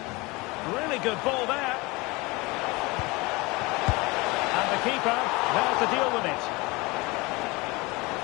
Really good ball there. And the keeper there to deal with it.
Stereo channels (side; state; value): right; quieter; 24.4 dB